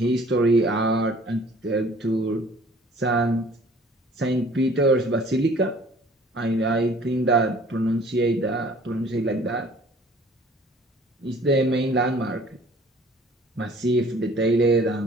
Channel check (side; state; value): both; normal; correlation 0.52